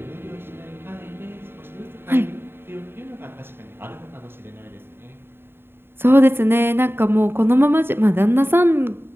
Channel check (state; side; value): late; left; 0.11 ms